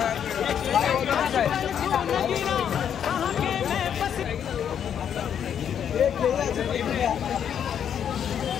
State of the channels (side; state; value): right; quieter; 8.7 dB